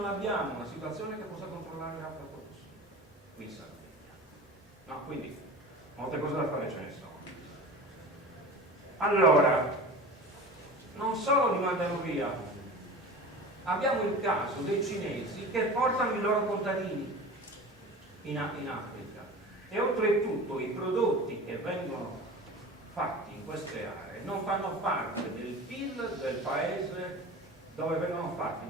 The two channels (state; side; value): normal; both; correlation 0.35